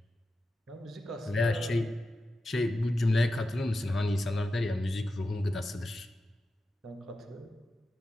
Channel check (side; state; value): both; normal; correlation 0.91